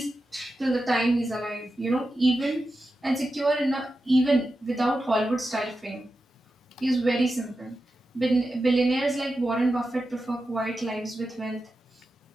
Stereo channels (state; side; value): normal; both; correlation 0.91